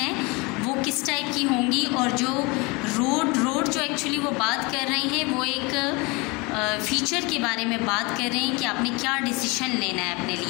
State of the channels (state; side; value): quieter; right; 27.0 dB